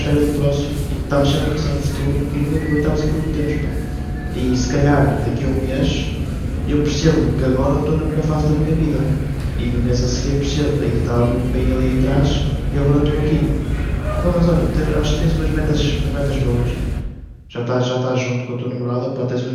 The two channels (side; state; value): both; identical; correlation 1.00